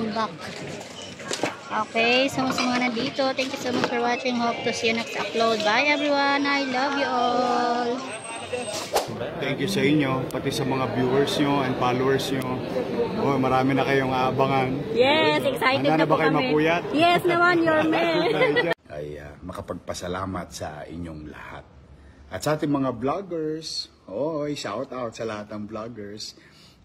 Okay, so sa mga nandito, thank you so much for watching. Hope to see you next upload. Bye everyone. I love you all. Thank you sa inyo, pati sa mga viewers nyo and followers nyo. Oh, marami na kayong aabangan. Yes, excited Handa na po ba kayo kami. mapuyat? Yes naman, your man. Ay makapagpasalamat sa inyong lahat. At sa ating mga vloggers, shout out sa lahat ng vloggers.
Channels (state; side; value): identical; both; correlation 1.00